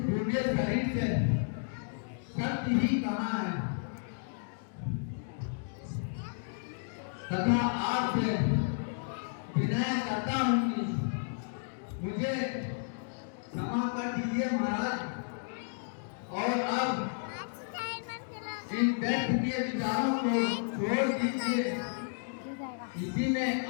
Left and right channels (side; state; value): right; silent; digital silence